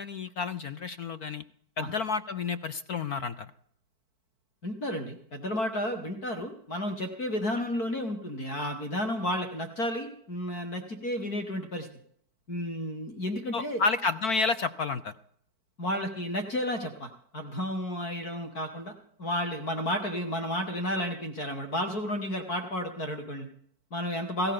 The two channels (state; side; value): late; right; 4.5 ms